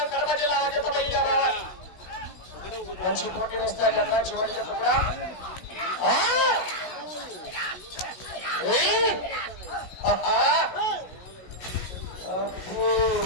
కడప జిల్లా జత బయలుదేరావాలి. మంచి పోటీ వస్తాయి కదా చివరి జత కూడా.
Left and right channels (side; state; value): right; late; 16 ms